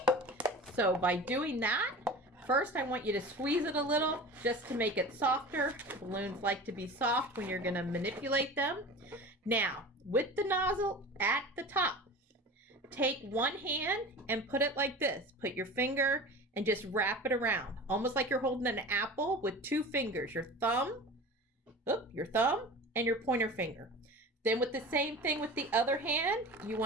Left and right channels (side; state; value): both; normal; correlation 0.35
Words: So by doing that, first I want you to squeeze it a little just to make it softer. Balloons like to be soft when you're gonna manipulate them. Now, with the nozzle at the top, take one hand and put it like this. Put your finger and just wrap it around, almost like you're holding an apple with 2 fingers, your thumb and your pointer finger. Then with the same thing with the other hand, you